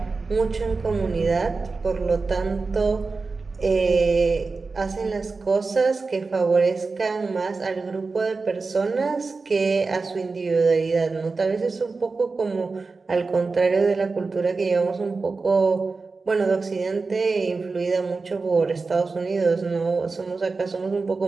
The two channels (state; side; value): quieter; left; 4.1 dB